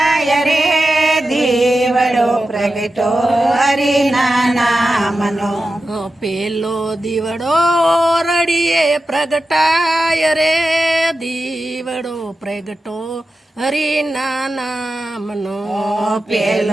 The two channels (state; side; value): normal; both; correlation 0.92